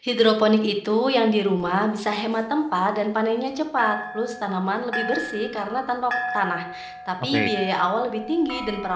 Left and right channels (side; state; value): both; identical; correlation 1.00